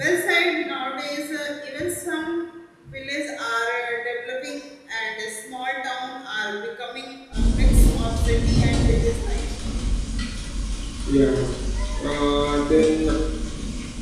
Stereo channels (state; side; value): identical; both; correlation 1.00